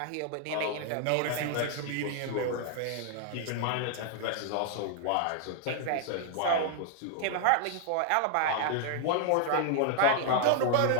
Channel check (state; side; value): different; both; correlation 0.00